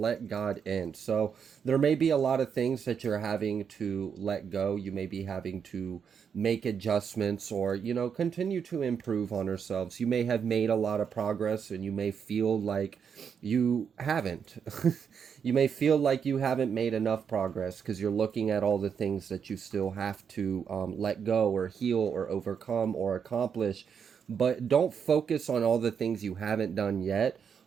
God in. So there may be a lot of things that you're having to let go. You may be having to make adjustments or, continue to improve on ourselves. You may have made a lot of progress and you may feel like you haven't. You may feel like you haven't made enough progress because you're looking at all the things that you still have to let go or heal or overcome or accomplish. But don't focus on all the things you haven't done yet.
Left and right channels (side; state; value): left; quieter; 7.1 dB